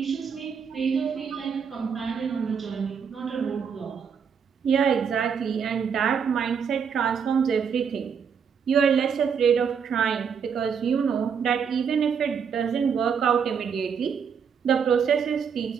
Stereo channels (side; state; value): left; quieter; 6.8 dB